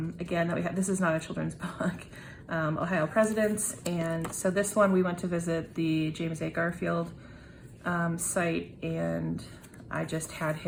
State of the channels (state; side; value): identical; both; correlation 1.00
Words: that we have. This is not a children's book, Ohio Presidents. And so this one, we went to visit the James A. Garfield site, and I just had